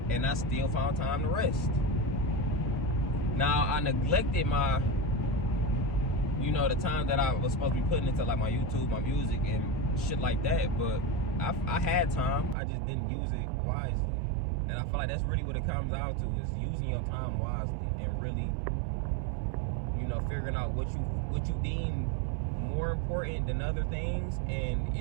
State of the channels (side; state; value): left; drops out; at 12.6 s